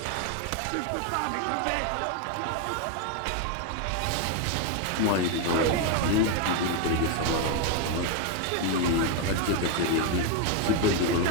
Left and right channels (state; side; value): different; both; correlation 0.01